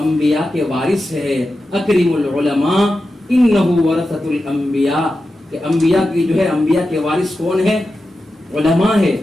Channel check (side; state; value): both; normal; correlation 0.91